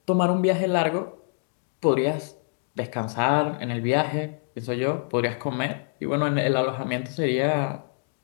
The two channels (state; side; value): silent; right; 61 dB below the other